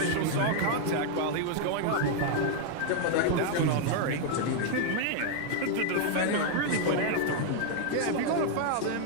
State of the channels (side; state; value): both; different; correlation 0.00